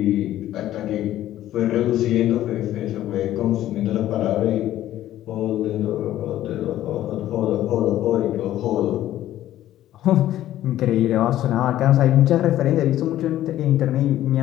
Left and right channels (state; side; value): quieter; right; 13.3 dB